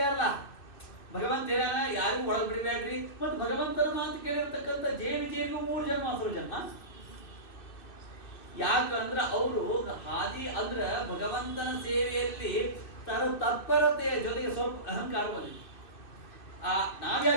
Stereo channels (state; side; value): late; right; 2.6 ms